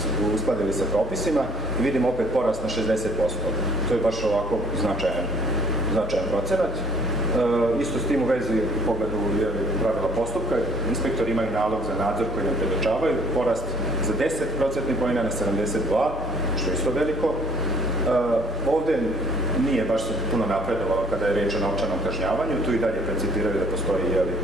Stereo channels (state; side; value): normal; both; correlation 0.58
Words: uskladili sa propisima, i vidimo opet porast na 60%. To je baš ovako značajan procenat. Isto s tim u vezi u pogledu pravila postupka, inspektori imaju nalog za nadzor koji nam predočavaju, porast za 10% poena na 72, što je isto veliko. Ovdje nije baš se puno napredovalo kada je riječ o novčanom kažnjavanju, tu i dalje percipiraju da postoji